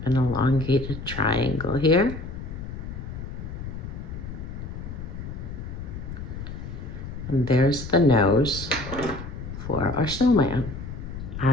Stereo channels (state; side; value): noise; left; rumble, 8 dB below the sound